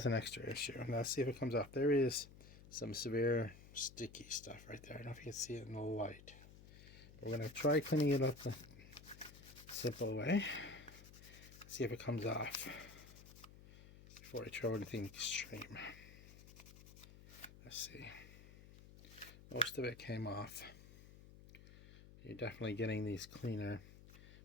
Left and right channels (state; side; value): noise; left; hum, 18 dB below the sound